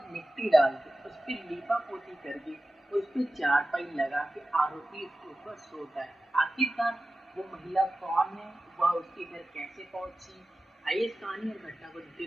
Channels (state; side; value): normal; both; correlation 0.94